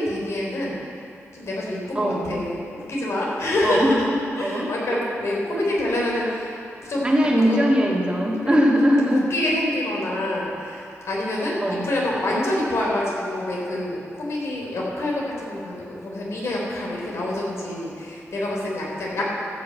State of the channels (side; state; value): both; normal; correlation 0.84